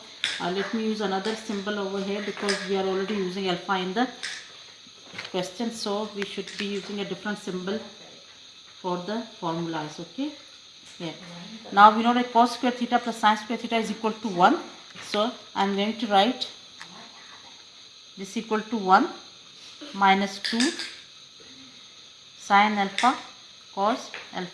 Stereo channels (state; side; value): identical; both; correlation 1.00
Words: let me use another symbol over here because we are already using alpha in the question, so we should be using a different symbol for the formulas. Okay, yeah. Now we know that cos square theta plus sin square theta is equal to 1, so I am going to write this equal to 1 minus 2 sin alpha cos